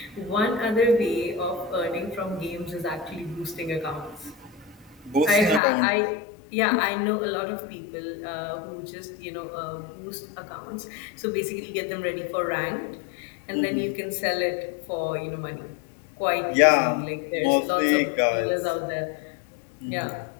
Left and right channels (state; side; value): drops out; right; at 5.6 s